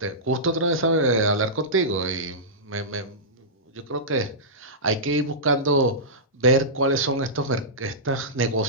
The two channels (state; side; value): normal; both; correlation -0.15